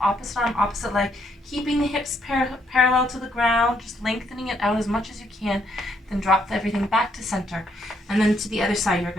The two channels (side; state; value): both; normal; correlation 0.73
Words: opposite arm, opposite leg, keeping the hips parallel to the ground, just lengthening it out as much as you can. Then drop everything back to center. And then to the other side, you're